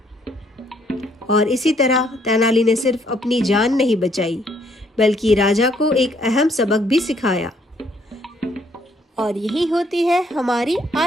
और इसी तरह तेनाली ने सिर्फ अपनी जान नहीं बचाई, बल्कि राजा को एक अहम सबक भी सिखाया। और यही होती है हमारी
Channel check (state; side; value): normal; both; correlation 0.67